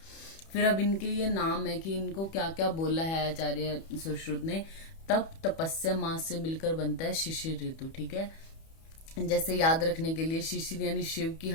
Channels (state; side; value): late; right; 31 ms